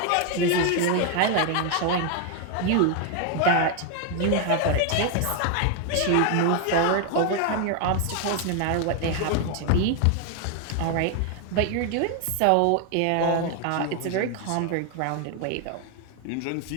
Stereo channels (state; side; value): different; both; correlation 0.01